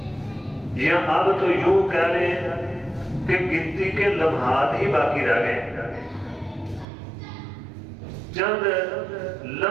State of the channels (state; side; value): drops out; left; at 6.9 s